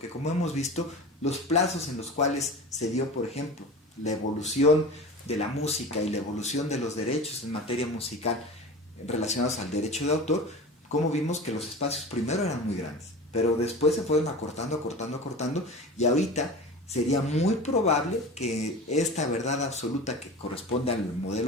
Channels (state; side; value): normal; both; correlation 0.33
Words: como hemos visto, los plazos en los cuales se dio, por ejemplo, la evolución de la música y la evolución de los derechos en materia musical relacionados al derecho de autor, como vimos que los espacios primero eran muy grandes, pero después se fueron acortando, y ahorita sería muy probable que esta verdad absoluta que corresponde al